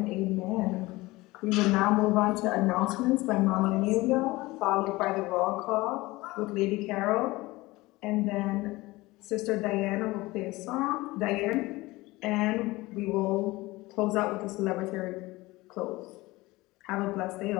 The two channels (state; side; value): quieter; right; 20.5 dB